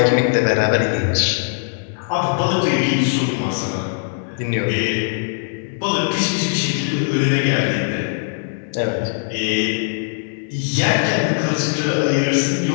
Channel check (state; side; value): silent; right; 66 dB below the other